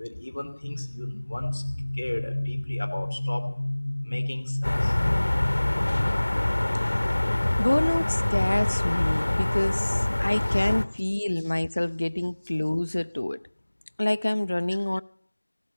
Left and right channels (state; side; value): inverted; both; correlation -1.00